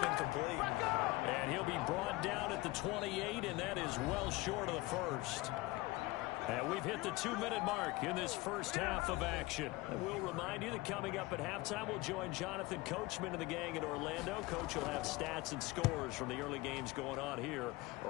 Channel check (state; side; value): quieter; right; 20.8 dB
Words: And he'll be brought down at the 28, and that is well short of the first. And we've hit the 2-minute mark in this first half of action. And we'll remind you that coming up at halftime, we'll join Jonathan Coachman and the gang in Orlando. Coach will have stats and scores from the early games going on here